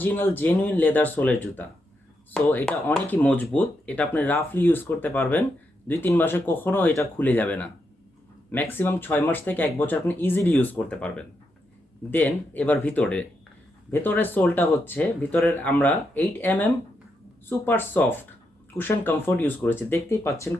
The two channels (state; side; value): normal; both; correlation 0.82